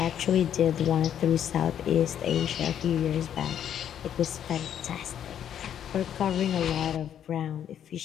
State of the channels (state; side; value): quieter; right; 9.7 dB